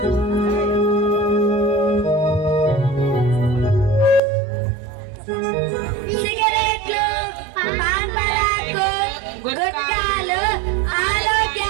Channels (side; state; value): left; drops out; at 4.2 s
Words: సిగరెట్లు, పాన్ పరాకు, గుట్కాలు